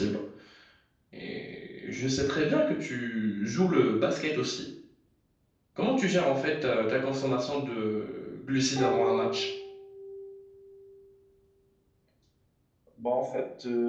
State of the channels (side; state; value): both; identical; correlation 1.00